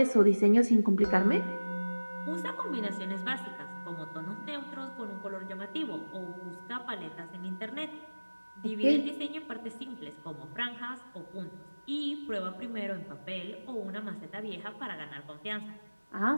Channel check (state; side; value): inverted; both; correlation -1.00